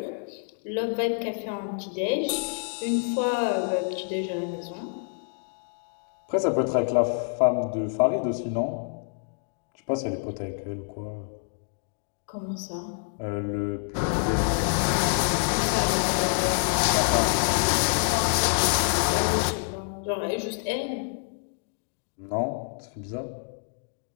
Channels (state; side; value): silent; right; 60 dB below the other